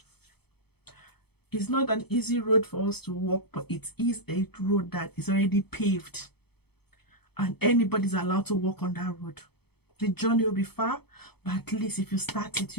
It's not an easy road for us to walk, but it is a road that is already paved, and anybody's allowed to walk on that road. The journey will be far, but at least if you start it,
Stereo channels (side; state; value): right; late; 0.97 ms